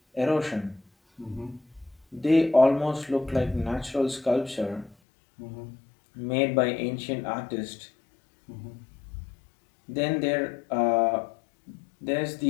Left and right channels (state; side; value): drops out; right; at 5.0 s